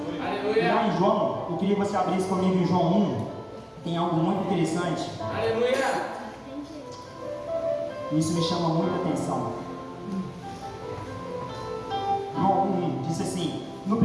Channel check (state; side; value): identical; both; correlation 1.00